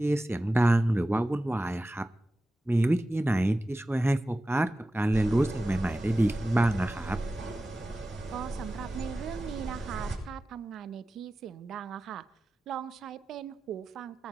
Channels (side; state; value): both; normal; correlation 0.95